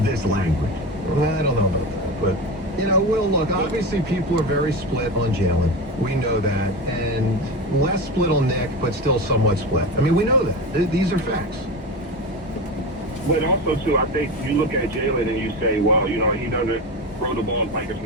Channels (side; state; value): both; normal; correlation 0.23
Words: this language. Well, I don't know about that, but, Will, look, obviously people are very split on Jalen. We know that. And less split on Nick, but still somewhat split. I mean, we know that. These are facts. But also, too, I think you look at Jalen and you say, wow, he doesn't throw the ball like a